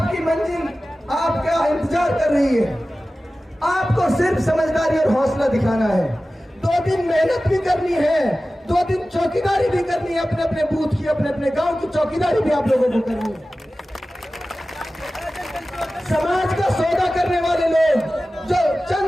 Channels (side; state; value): both; normal; correlation 0.96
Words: आपका इंतजार कर रही है। आपको सिर्फ समझदारी और हौसला दिखाना है। 2 दिन मेहनत भी करनी है, 2 दिन चौकीदारी भी करनी है, अपने अपने बूथ की, अपने अपने गांव की चौकीदारी भी आप लोगों को करनी है। समाज का सौदा करने वाले लोग जो